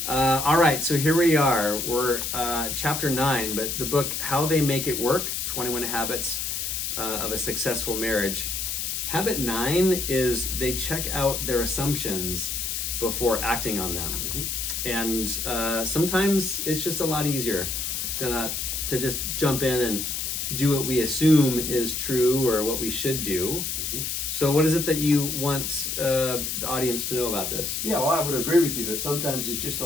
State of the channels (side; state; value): left; noise; hiss, 2 dB below the sound